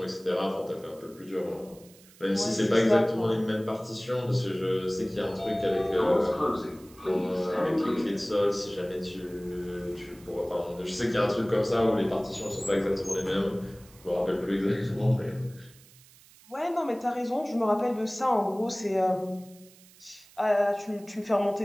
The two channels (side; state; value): right; noise; hiss, 25 dB below the sound